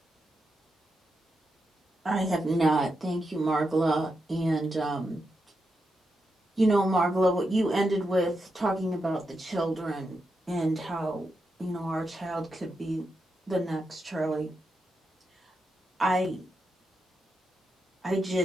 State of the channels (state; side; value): normal; both; correlation 0.86